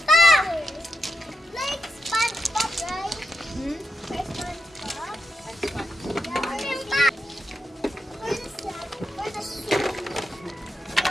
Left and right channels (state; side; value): normal; both; correlation 0.85